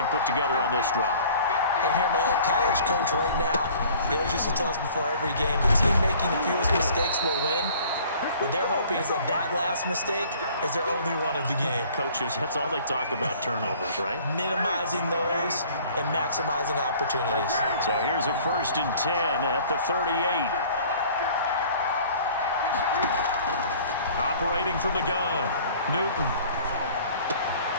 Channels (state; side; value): inverted; both; correlation -0.51